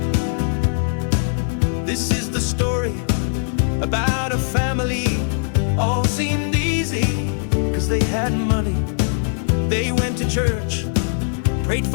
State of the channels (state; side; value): silent; right; digital silence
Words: This is the story about a family. All seemed easy, 'cause they had money. They went to church, prayed